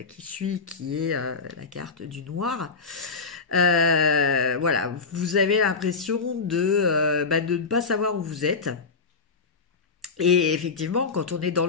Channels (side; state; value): right; quieter; 4.5 dB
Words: qui suit, qui est la carte du noir, voilà, vous avez l'impression de ne pas savoir où vous êtes. Et effectivement, quand on est dans